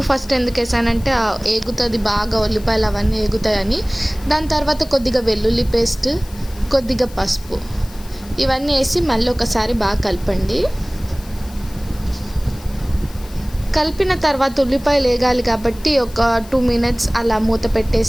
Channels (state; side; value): noise; left; hiss, 21 dB below the sound